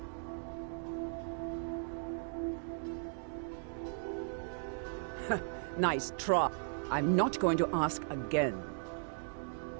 Nice try. I'm not going to ask again.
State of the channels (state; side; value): silent; left; digital silence